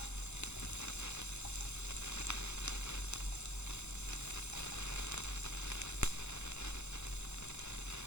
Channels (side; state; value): right; late; 0.82 ms